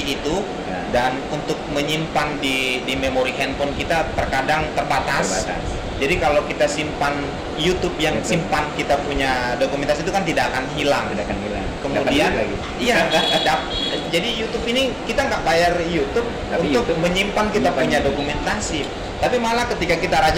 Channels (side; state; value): both; identical; correlation 1.00